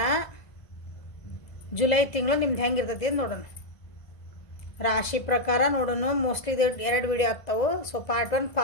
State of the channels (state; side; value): late; right; 1.5 ms